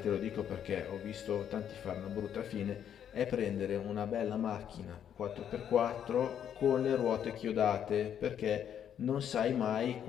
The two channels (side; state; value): right; quieter; 9.2 dB